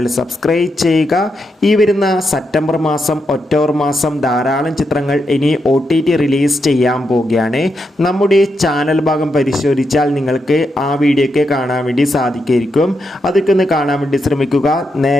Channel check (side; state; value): both; normal; correlation 0.83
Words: സബ്സ്ക്രൈബ് ചെയ്യുക. ഈ വരുന്ന സെപ്റ്റംബർ മാസം, ഒക്ടോബർ മാസം ധാരാളം ചിത്രങ്ങൾ ഇനി OTT റിലീസ് ചെയ്യാൻ പോവുകയാണ്. നമ്മുടെ ചാനൽ ഭാഗം പരിശോധിച്ചാൽ നിങ്ങൾക്ക് ആ വീഡിയോയ്ക്ക് കാണാൻ വേണ്ടി സാധിക്കുമായിരിക്കും. അതൊക്കെ ഒന്ന് കാണാൻ വേണ്ടി ശ്രമിക്കുക.